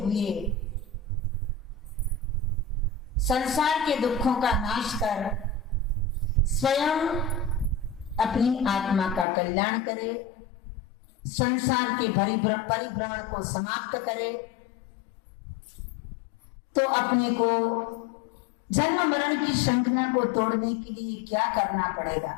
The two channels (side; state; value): right; drops out; at 9.2 s